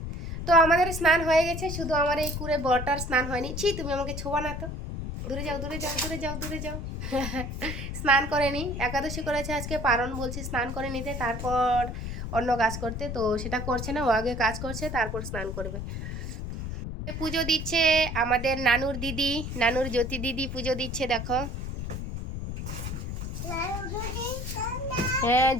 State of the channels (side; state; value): left; noise; rumble, 5 dB below the sound